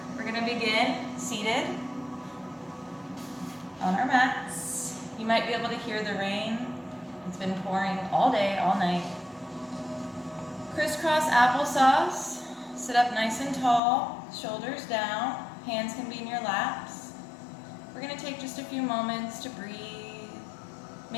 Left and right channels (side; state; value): right; drops out; at 13.8 s